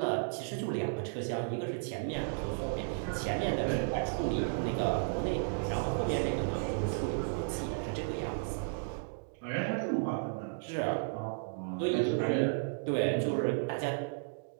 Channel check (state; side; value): silent; left; digital silence